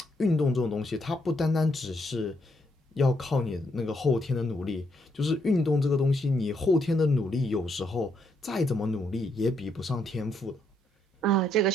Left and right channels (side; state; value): both; normal; correlation 0.75